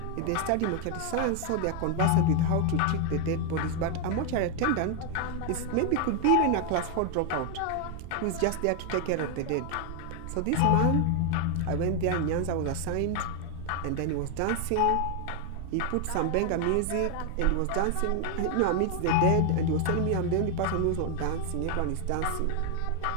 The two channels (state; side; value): different; both; correlation 0.00